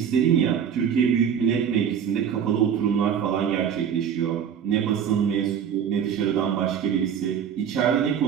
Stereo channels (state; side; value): quieter; left; 8.1 dB